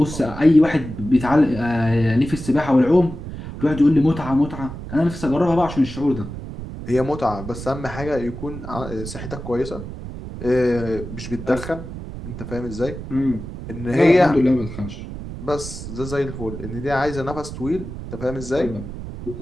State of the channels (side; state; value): right; noise; rumble, 10 dB below the sound